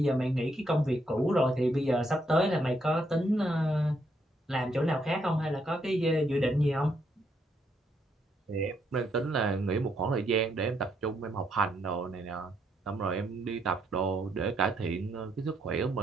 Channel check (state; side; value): normal; both; correlation 0.74